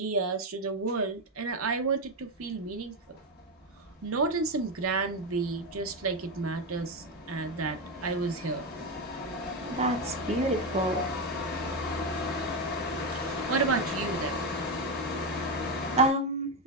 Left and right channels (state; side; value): normal; both; correlation 0.10